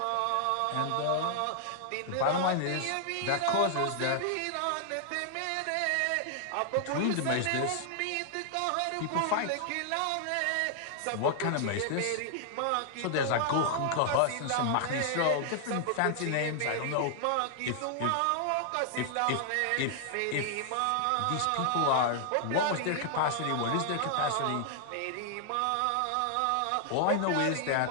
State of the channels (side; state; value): both; different; correlation 0.00